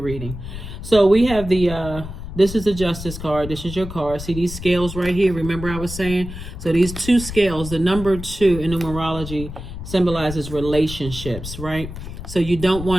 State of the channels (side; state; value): left; noise; rumble, 10 dB below the sound